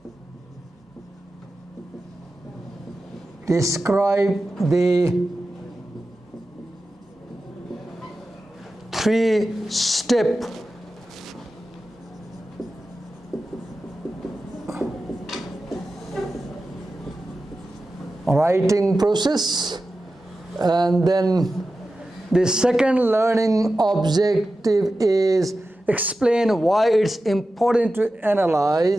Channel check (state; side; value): normal; both; correlation 0.93